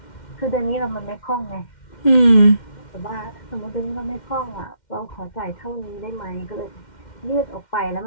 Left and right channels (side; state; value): right; late; 2.1 ms